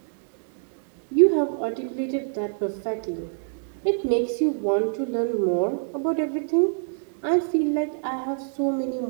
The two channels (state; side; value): silent; left; digital silence